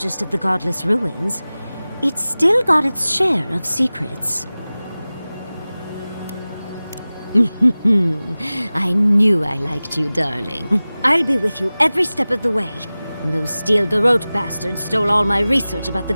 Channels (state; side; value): inverted; both; correlation -0.98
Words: of the godless ruins. It's still got its share of secrets. I knew I liked you, darling. I'll be with you every step of the way. Those Steel Garrote bastards stole all my research about the